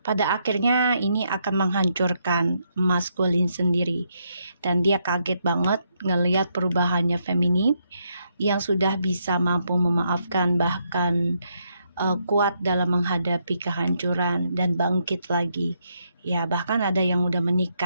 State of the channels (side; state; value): both; inverted; correlation -0.77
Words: Pada akhirnya ini akan menghancurkan maskulin sendiri, dan dia kaget banget ngelihat perubahannya feminim yang sudah bisa mampu memaafkan, bahkan kuat dalam menghadapi kehancuran dan bangkit lagi ya. Bahkan ada yang udah